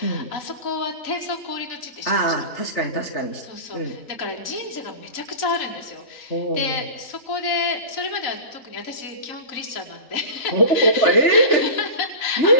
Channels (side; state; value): right; late; 4.0 ms